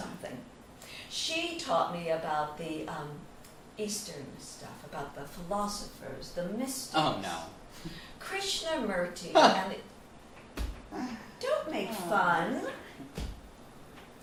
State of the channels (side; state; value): both; identical; correlation 1.00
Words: She taught me about the Eastern stuff, about the philosophers, the mystics. Oh, no. Krishnamurti. And don't make fun.